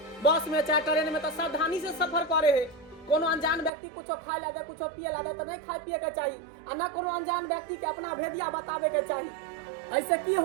बस में चाहे ट्रेन में तो सावधानी से सफर करे है। कोनो अनजान व्यक्ति कुछ खाए ला दे, कुछ पिए ला दे तो नहीं खाए पिए के चाहिए, आ न कोनो अनजान व्यक्ति के अपना भेदिया बतावे के चाहिए। ऐसे की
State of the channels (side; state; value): left; drops out; at 3.7 s